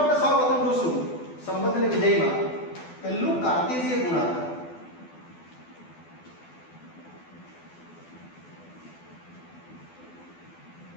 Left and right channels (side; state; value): right; late; 12 ms